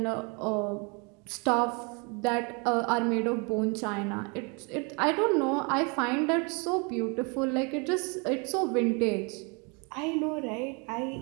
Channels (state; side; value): quieter; left; 32.5 dB